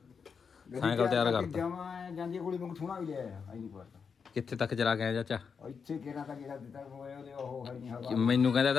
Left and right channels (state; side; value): quieter; right; 6.0 dB